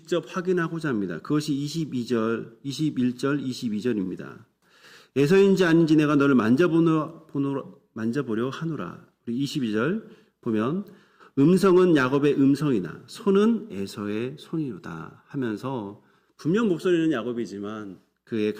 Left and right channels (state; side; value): identical; both; correlation 1.00